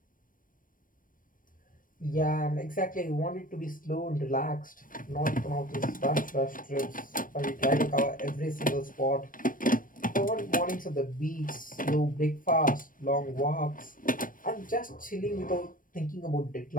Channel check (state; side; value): late; right; 0.40 ms